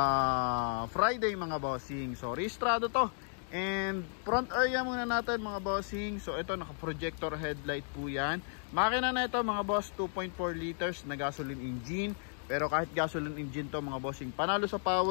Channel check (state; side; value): silent; right; 55 dB below the other